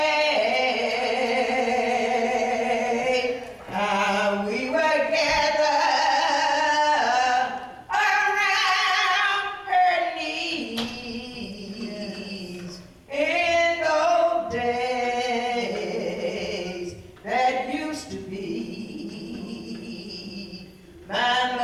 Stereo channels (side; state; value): both; identical; correlation 1.00